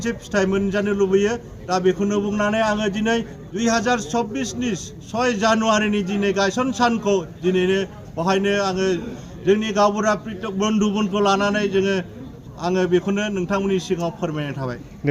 फिथाइ मोनजानो लुबैयो। दा बेखौनो बुंनानै आङो दिनै 2024 नि 6 जानुवारिनि दिनै गायसन सानखौ दिनैनो बेवहायनो आङो जोंनि गावबुरा बन्धुमोनखौ लानानै आङो बेखौनो नोंथांमोननि सिगाङाव फोरमायनाय थाबाय।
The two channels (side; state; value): both; identical; correlation 1.00